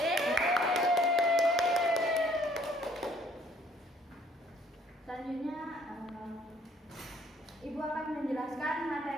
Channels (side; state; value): both; normal; correlation 0.61